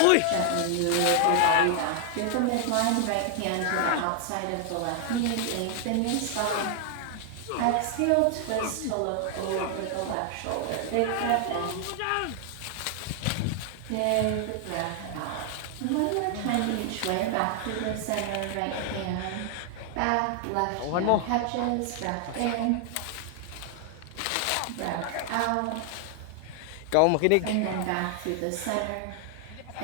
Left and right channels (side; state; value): both; different; correlation 0.00